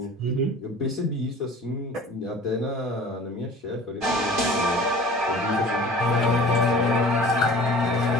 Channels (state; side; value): normal; both; correlation 0.44